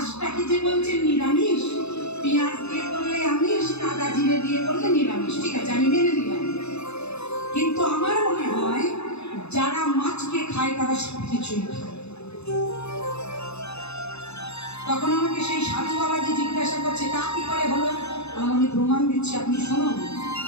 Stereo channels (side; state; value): right; late; 0.80 ms